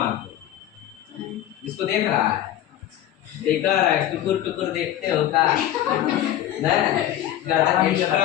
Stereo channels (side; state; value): right; quieter; 12.3 dB